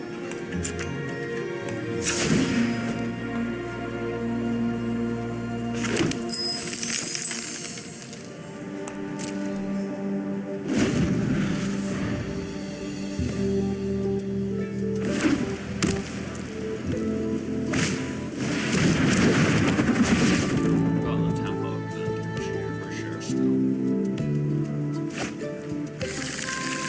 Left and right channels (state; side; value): identical; both; correlation 1.00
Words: Got the tempo of the cheer for sure still.